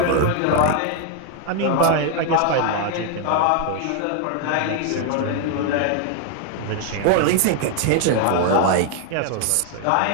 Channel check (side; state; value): both; different; correlation 0.00